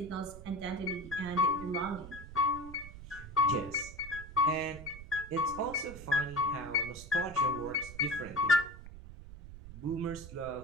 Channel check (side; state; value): right; noise; rumble, 14 dB below the sound